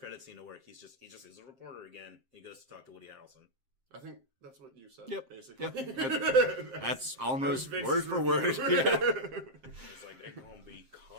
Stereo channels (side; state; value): left; late; 7.6 ms